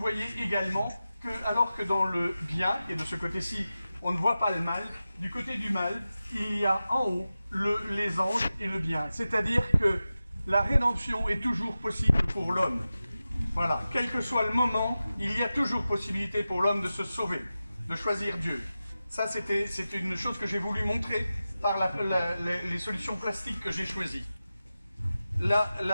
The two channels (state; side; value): inverted; both; correlation -0.94